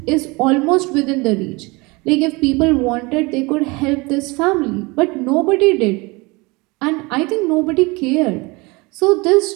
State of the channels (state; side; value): quieter; left; 25.6 dB